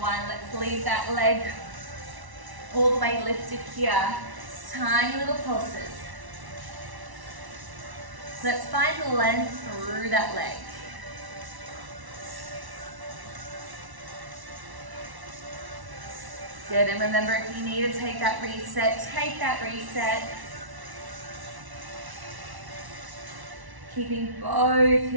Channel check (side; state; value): left; late; 1.1 ms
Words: 1. Let's leave that leg all the way lifted here. Tiny little pulses. Let's find length through that leg. Good, and remember, if you need to take that reset, take that reset. Keeping both